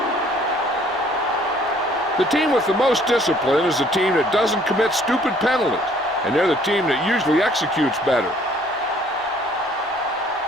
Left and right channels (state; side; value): normal; both; correlation 0.59